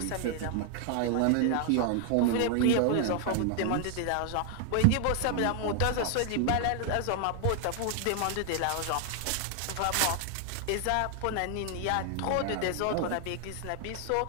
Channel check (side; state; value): both; different; correlation 0.00